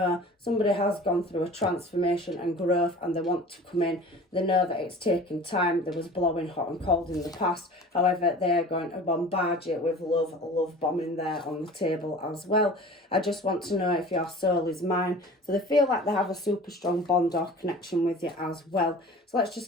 somebody has gone through a transformation and growth and they want to come in. They know that it's taken time. There was blowing hot and cold in the past. However, they're going to bombard you with love bombing there on the table as well. I just want to know if your soul is mine. So they feel like they have a super strong bond or connection with you as well. So let's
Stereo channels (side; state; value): both; normal; correlation 0.41